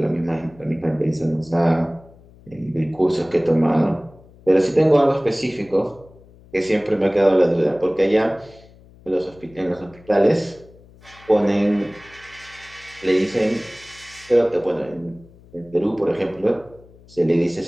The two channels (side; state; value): left; noise; hum, 25 dB below the sound